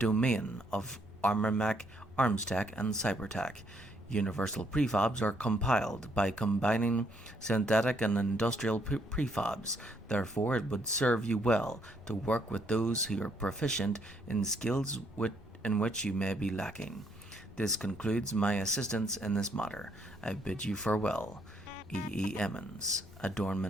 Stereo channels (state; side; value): normal; both; correlation 0.71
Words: of armormech, armstech, and cybertech. Universal prefabs are compiled by combining synthetic and industrial prefabs. Therefore, it would serve you well to work with those who are proficient in skills in which you may be lacking. This concludes my assistance in this matter. I bid you farewell. E. Emmons,